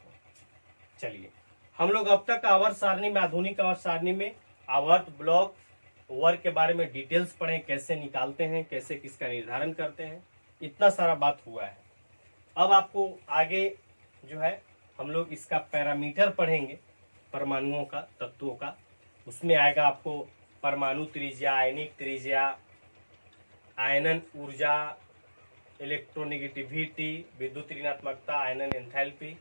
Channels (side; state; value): both; inverted; correlation -1.00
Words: चलिए, हम लोग अब तक आवर्त सारणी में, आधुनिक आवर्त सारणी में आवर्त, ब्लॉक, वर्ग के बारे में डिटेल्स पढ़े, कैसे निकालते हैं, कैसे किसका निर्धारण करते हैं, इतना सारा बात हुआ है। अब आपको आगे जो है हम लोग इसका पैरामीटर पढ़ेंगे, परमाणुओं का, तत्वों का। उसमें आएगा आपको परमाणु त्रिज्या, आयनिक त्रिज्या, आयनन ऊर्जा, इलेक्ट्रोनेगेटिविटी, विद्युत ऋणात्मकता, आयनन एंथैल्पी,